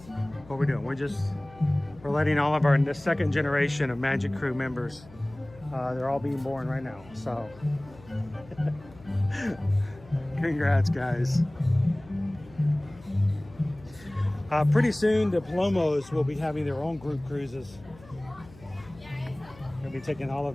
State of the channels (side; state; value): left; noise; hum, 22 dB below the sound